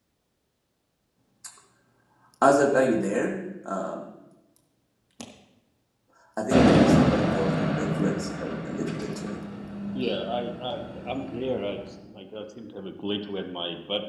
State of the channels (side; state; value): both; identical; correlation 1.00